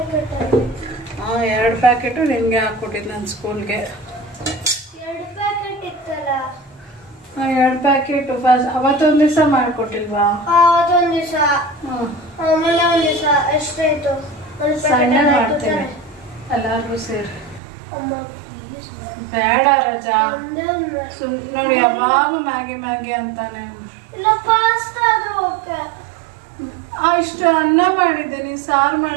ಹಾಂ, 2 ಪ್ಯಾಕೆಟು ನಿನಗೆ ಹಾಕ್ಕೊಟ್ಟಿದ್ದು ನನ್ನ ಸ್ಕೂಲ್ಗೆ. 2 ಪ್ಯಾಕೆಟ್ ಇತ್ತಲ್ಲ? ಹಾಂ, 2 ಪ್ಯಾಕೆಟು. ಫಸ್ಟ್ ಅವತ್ತೊಂದು ದಿವಸ ಮಾಡಿಕೊಟ್ಟಿಲ್ವಾ? ಅವತ್ತೊಂದು ದಿವಸ. ಹಾಂ, ಆಮೇಲೆ ಒಂದು ದಿವಸ ಎಷ್ಟಾಯ್ತು? ಸಣ್ಣ ಮಾಡ್ತೇನೆ ಎಲ್ಲರಿಗೂ ಸೇರಿ. ಅಮ್ಮ ಬೇಡ ರಜಾ, ನೋಡಿ ಯಾವಾಗ ಮ್ಯಾಗಿ ಮ್ಯಾಗಿ ಅಂತಾನೆ. ಇಲ್ಲ, ಪಾಸ್ತಾ ಆದ್ರೂ ಓಕೆ. ಇಷ್ಟು ಅನ್ನ ಮಾಡಿದ್ದೀನಿ, ಸಾರು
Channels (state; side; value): drops out; left; at 17.6 s